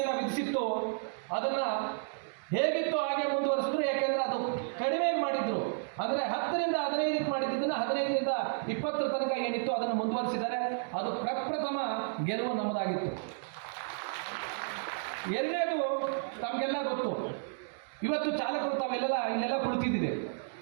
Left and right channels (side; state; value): left; silent; digital silence